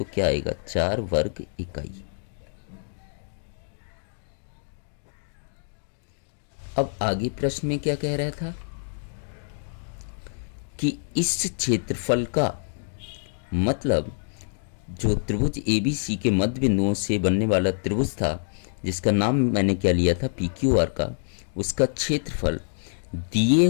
क्या आएगा? 4 वर्ग इकाई। अब आगे प्रश्न में क्या कह रहा था कि इस क्षेत्रफल का मतलब जो त्रिभुज ABC के मध्य बिंदुओं से बनने वाला त्रिभुज था, जिसका नाम मैंने क्या लिया था? PQR का, उसका क्षेत्रफल दिए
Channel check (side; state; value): right; silent; digital silence